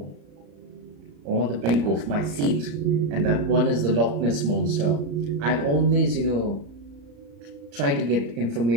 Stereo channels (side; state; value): left; late; 34 ms